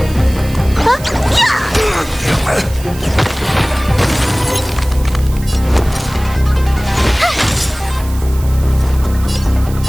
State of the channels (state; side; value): noise; right; hiss, 17 dB below the sound